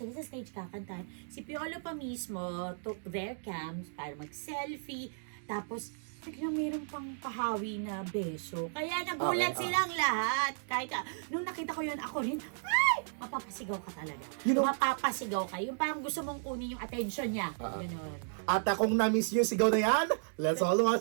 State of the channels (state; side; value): silent; left; digital silence